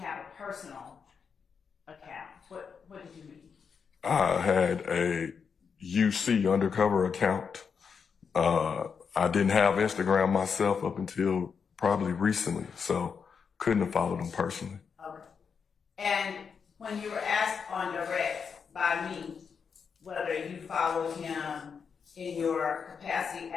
a personal account? What did you mean? I had a UC undercover account. I didn't have Instagram myself up until probably recently, so couldn't have followed them personally. Okay. And when you were asked on direct by me whether you followed him in your capacity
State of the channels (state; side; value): quieter; right; 6.2 dB